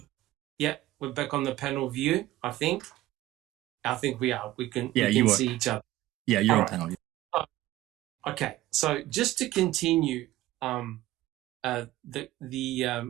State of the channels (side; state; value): left; quieter; 15.9 dB